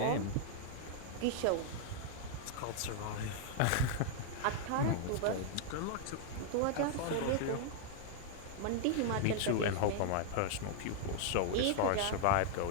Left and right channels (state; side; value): different; both; correlation -0.01